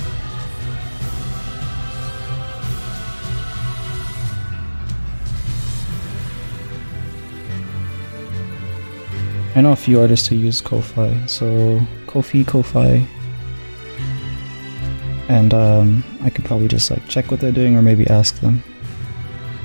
I know a few artists who use Ko-Fi, so Ko-Fi. And I could probably just like check what they're doing or maybe ask them.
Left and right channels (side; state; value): both; inverted; correlation -1.00